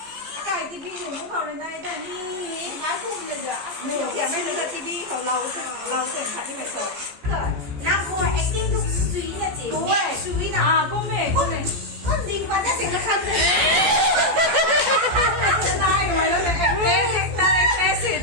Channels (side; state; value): left; late; 14 ms